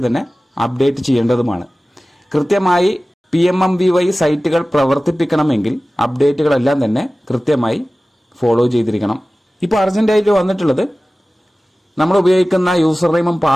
തന്നെ അപ്ഡേറ്റ് ചെയ്യേണ്ടതുമാണ്. കൃത്യമായി PMMBY സൈറ്റുകൾ പ്രവർത്തിപ്പിക്കണമെങ്കിൽ അപ്ഡേറ്റുകളെല്ലാം തന്നെ കൃത്യമായി ഫോളോ ചെയ്തിരിക്കണം. ഇപ്പോൾ അർജന്റായിട്ട് വന്നിട്ടുള്ളത് നമ്മൾ ഉപയോഗിക്കുന്ന യൂസർ നെയിമും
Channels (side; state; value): both; normal; correlation 0.97